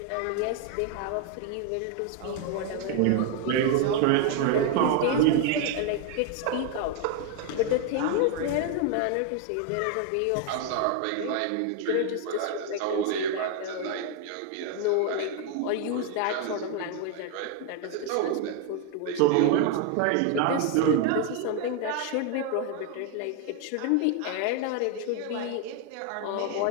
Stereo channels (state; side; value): different; both; correlation 0.01